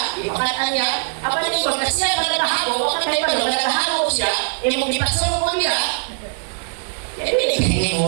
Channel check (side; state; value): left; silent; 64 dB below the other